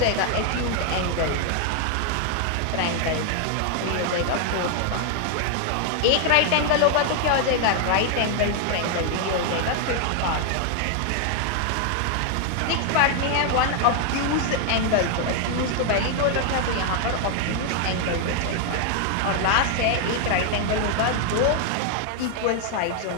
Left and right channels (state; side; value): different; both; correlation 0.00